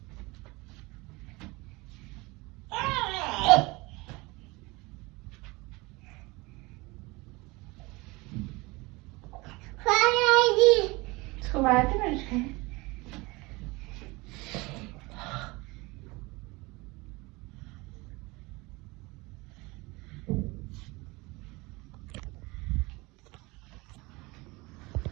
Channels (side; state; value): left; quieter; 23.9 dB